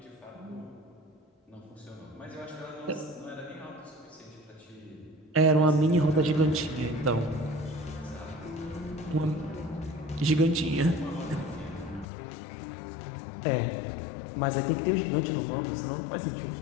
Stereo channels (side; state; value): right; drops out; at 12.1 s